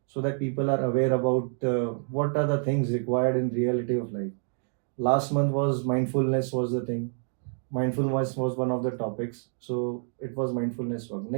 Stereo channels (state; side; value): silent; left; 60 dB below the other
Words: so that people are aware about what are the things required in reality of life. Last month was mindfulness was the thing. Mindfulness was one of the topics. So it was mindfulness work.